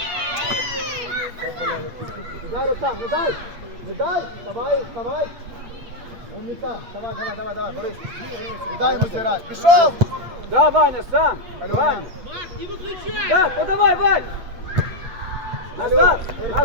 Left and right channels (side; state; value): left; late; 8.3 ms